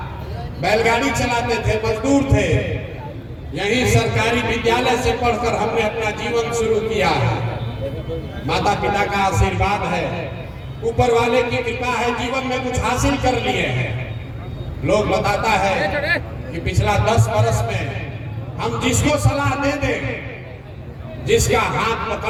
बैलगाड़ी चलाते थे, मजदूर थे। यहीं सरकारी विद्यालय से पढ़कर हमने अपना जीवन शुरू किया है। माता पिता का आशीर्वाद है, ऊपर वाले की कृपा है, जीवन में कुछ हासिल कर लिए हैं। लोग बताता है कि पिछला 10 वर्ष में हम जिसको सलाह दे दें, जिसका हाथ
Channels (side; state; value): both; identical; correlation 1.00